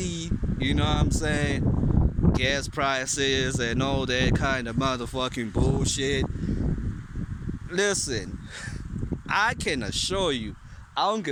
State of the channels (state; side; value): identical; both; correlation 1.00